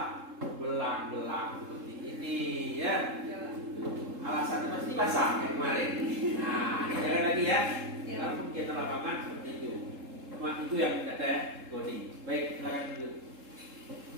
belang-belang seperti ini ya. Alasannya pasti basah kayak kemarin. Nah, jangan lagi ya. Kalau kegiatan lapangan seperti itu. Cuma itu yang tidak ada ya, Goni. Baik, silakan dulu.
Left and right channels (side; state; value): left; late; 3.7 ms